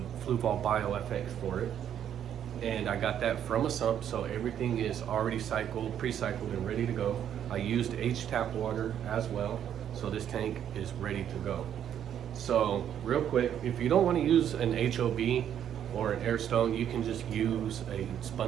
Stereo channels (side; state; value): left; quieter; 9.7 dB